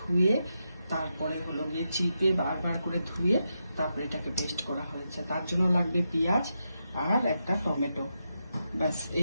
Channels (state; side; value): inverted; both; correlation -0.86